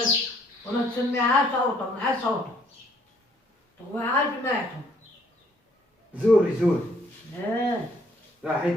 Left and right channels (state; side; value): normal; both; correlation 0.64